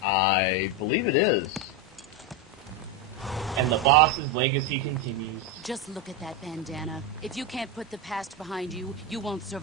I believe it is. And the boss's legacy continues. Just look at that bandana. If you can't put the past behind you, you won't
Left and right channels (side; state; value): both; normal; correlation 0.09